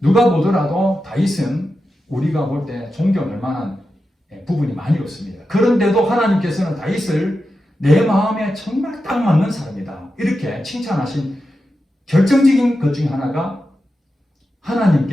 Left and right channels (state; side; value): normal; both; correlation 0.90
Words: 보더라도 다윗은 우리가 볼 때 존경할 만한 부분이 많이 없습니다. 그런데도 하나님께서는 다윗을 내 마음에 정말 딱 맞는 사람이다. 이렇게 칭찬하신 결정적인 것 중에 하나가